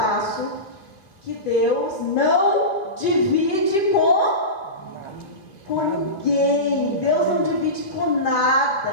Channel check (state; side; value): late; right; 2.7 ms